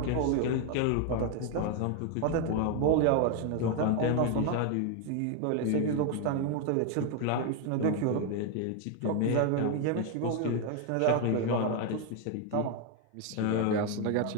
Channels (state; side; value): different; both; correlation 0.01